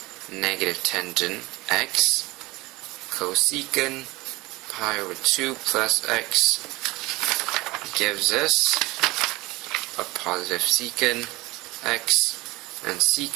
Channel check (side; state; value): left; quieter; 21.4 dB